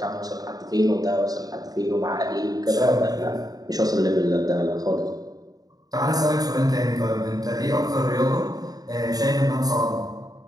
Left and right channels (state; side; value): late; left; 0.18 ms